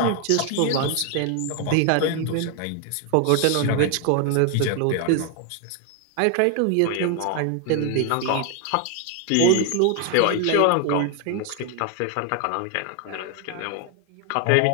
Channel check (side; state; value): both; different; correlation 0.01